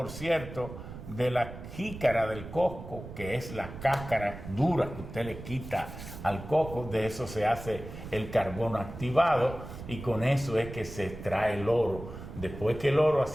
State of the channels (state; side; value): noise; right; rumble, 12 dB below the sound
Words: cierto, de la jícara del coco, que es la cáscara dura que usted le quita al coco. De eso se hace el carbono activado, y con eso es que se extrae el oro. Después que el oro ha